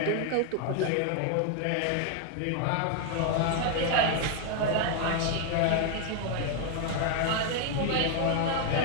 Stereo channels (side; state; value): both; different; correlation 0.01